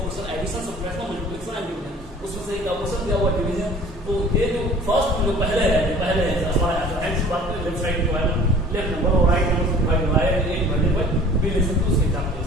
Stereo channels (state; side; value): normal; both; correlation 0.48